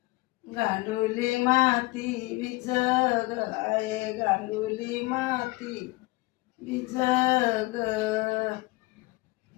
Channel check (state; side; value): quieter; right; 22.3 dB